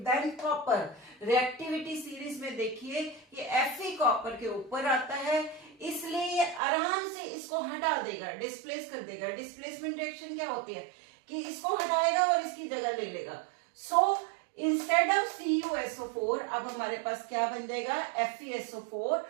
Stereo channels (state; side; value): drops out; left; at 6.6 s